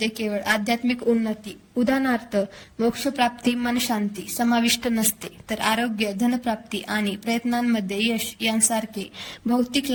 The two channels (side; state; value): both; identical; correlation 1.00